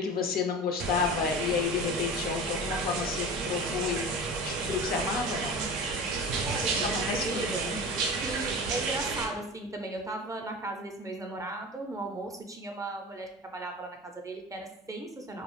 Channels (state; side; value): normal; both; correlation 0.32